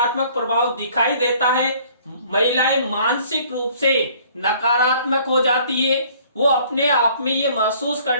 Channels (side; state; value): both; inverted; correlation -0.56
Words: प्रभाव दिखाई देता है। महिलाएं मानसिक रूप से नकारात्मक हो जाती है, वो अपने आप में ये महसूस